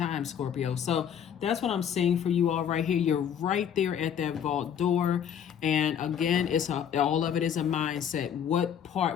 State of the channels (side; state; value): right; quieter; 8.7 dB